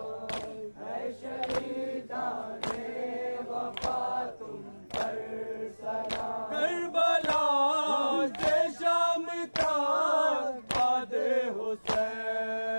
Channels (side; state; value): both; inverted; correlation -1.00